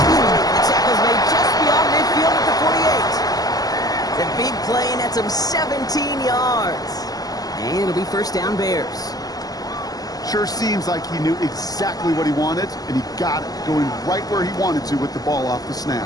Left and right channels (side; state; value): right; late; 0.18 ms